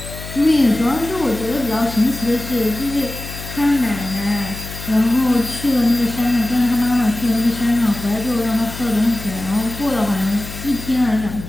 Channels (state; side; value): noise; left; hum, 11 dB below the sound